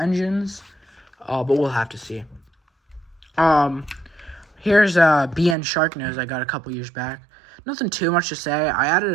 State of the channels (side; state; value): left; drops out; at 5.6 s